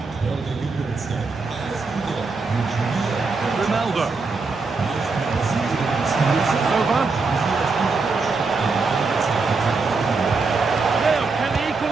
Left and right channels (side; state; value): left; quieter; 4.2 dB